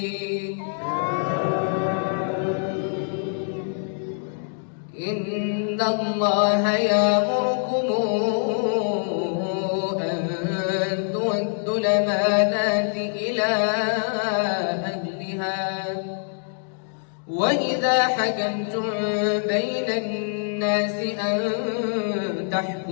إن الله يأمركم أن تؤدوا الأمانات إلى أهلها وإذا حكمتم بين الناس أن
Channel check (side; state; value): right; silent; digital silence